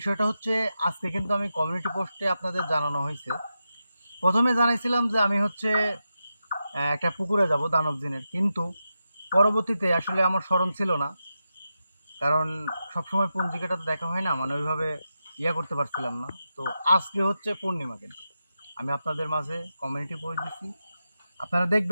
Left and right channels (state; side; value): inverted; both; correlation -0.89